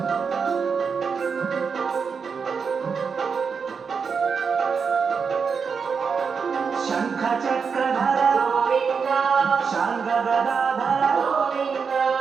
శంఖ చక్రధర గోవింద శాంగ గదాధర గోవింద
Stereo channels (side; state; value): left; quieter; 5.8 dB